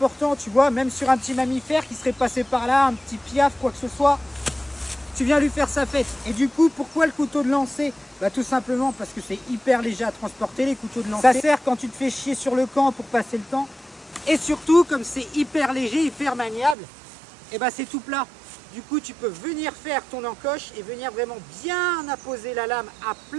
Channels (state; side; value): drops out; left; at 16.8 s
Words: tu vois, même sur un petit mammifère qui serait passé par là, un petit piaf, quoi que ce soit, tu viens lui faire sa fête. Et du coup, pourquoi le couteau de lancer? Tout simplement parce que c'est hyper léger à transporter les couteaux de lancer. Ça sert quand tu te fais chier sur le camp pour passer le temps. Et surtout, comme c'est hyper léger, hyper maniable, c'est tout plat. Du coup, tu peux venir faire ton encoche et venir vraiment bien apposer la lame à